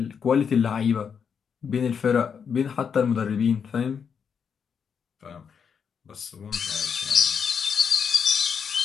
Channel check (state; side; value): quieter; right; 6.8 dB